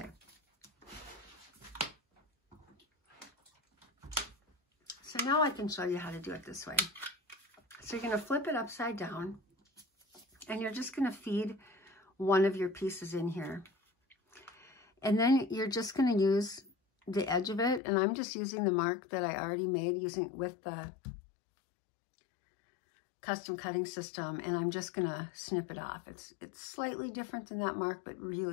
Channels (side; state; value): right; drops out; at 17.8 s